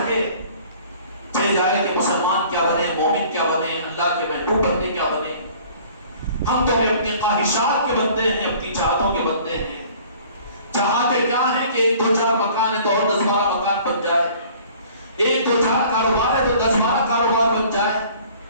چاہے جائے کہ مسلمان کیا بنے، مومن کیا بنے، اللہ کے محبوب بندے کیا بنے. ہم تو اپنی خواہشات کے بندے ہیں، اپنی چاہتوں کے بندے ہیں. چاہتے کیا ہیں کہ 1-2-4 مکان ہے تو اور 10-12 مکان بن جائے، 1-2-4 کاروبار ہے تو 10-12 کاروبار بن جائے.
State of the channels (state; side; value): inverted; both; correlation -0.51